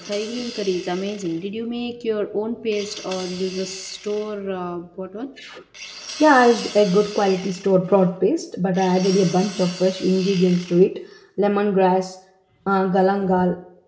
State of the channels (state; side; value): identical; both; correlation 1.00